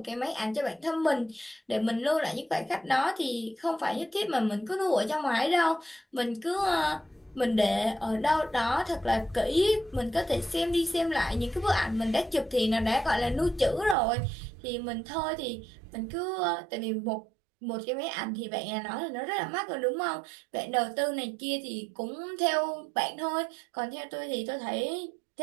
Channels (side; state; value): left; drops out; at 14.0 s